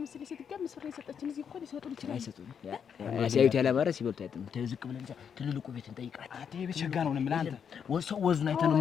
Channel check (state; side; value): quieter; right; 7.4 dB